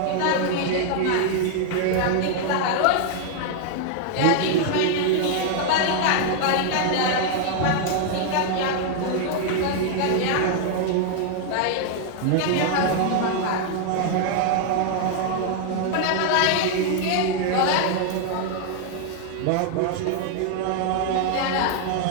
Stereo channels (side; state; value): both; different; correlation 0.00